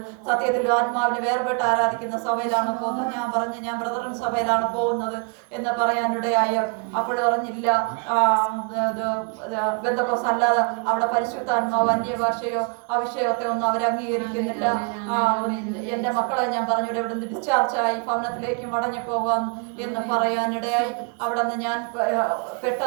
സത്യത്തിൽ ആത്മാവിനെ വേർപെട്ട് ആരാധിക്കുന്ന സഭയിലാണ് പോകുന്നത്. ഞാൻ പറഞ്ഞു ഞാൻ ബ്രദറൻ സഭയിലാണ് പോകുന്നത് എന്ന് പറയാനിടയായി. അപ്പോൾ പറഞ്ഞില്ല, ബന്ധക്കോസ് അല്ലാതെ അവിടെ പരിശുദ്ധാത്മാവ് അന്യഭാഷയോ അവിഷയത്തെ ഒന്നും അവർ അംഗീകരിക്കുന്നില്ല. എൻ്റെ മക്കളെ ഞാൻ പറഞ്ഞു ഇവിടെ നിന്ന് ഡിസ്ചാർജായി ഭവനത്തിലേക്ക് മടങ്ങി പോകാം എന്ന് പറയാനിടയായി. അവിടെ നിന്ന് ഞാൻ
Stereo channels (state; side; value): quieter; left; 36.5 dB